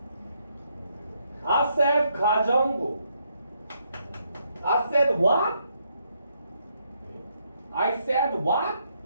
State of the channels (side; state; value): both; inverted; correlation -0.75